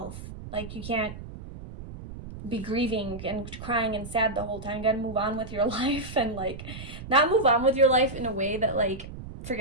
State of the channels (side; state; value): right; noise; rumble, 12 dB below the sound